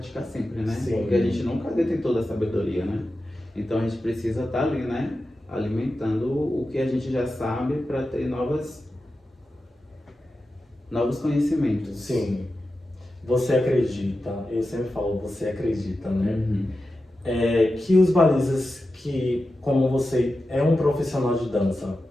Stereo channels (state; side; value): normal; both; correlation 0.92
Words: sempre, né? Sim. Porque a gente nunca detém toda a sabedoria, né? Então a gente precisa estar ali, né? Alimentando o que a gente já sabe para ter novos conhecimentos. Sim. Você acredita, eu sempre falo, você acredita, né? Uhum. Que os balizas que, como você é um profissional de dança,